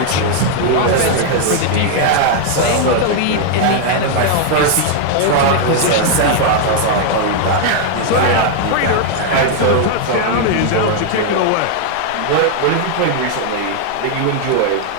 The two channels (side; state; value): both; different; correlation 0.00